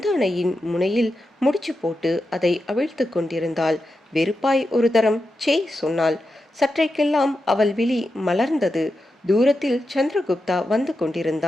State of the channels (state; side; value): normal; both; correlation 0.89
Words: முனையில் முடிச்சு போட்டு அதை அவிழ்த்து கொண்டிருந்தாள். வெறுப்பாய் ஒரு தரம் சே சொன்னாள். சற்றைக்கெல்லாம் அவள் விழி மலர்ந்தது. தூரத்தில் சந்திரகுப்தா வந்து